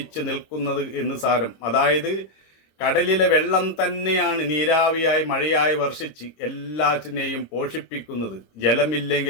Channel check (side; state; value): right; late; 26 ms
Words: നിൽക്കുന്നത് എന്ന് സാരം. അതായത് കടലിലെ വെള്ളം തന്നെയാണ് നീരാവിയായി മഴയായി വർഷിച്ച് എല്ലാറ്റിനെയും പോഷിപ്പിക്കുന്നത്.